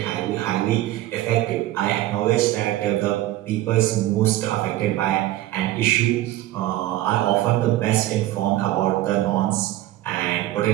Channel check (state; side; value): quieter; left; 15.0 dB